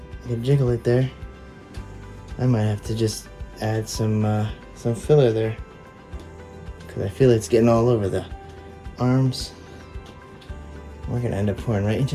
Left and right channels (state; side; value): identical; both; correlation 1.00